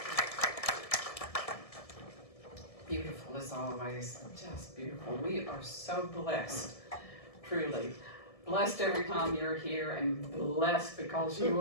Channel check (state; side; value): late; right; 1.7 ms